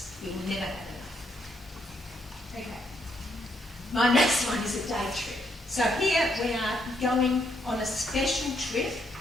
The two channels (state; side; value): normal; both; correlation 0.75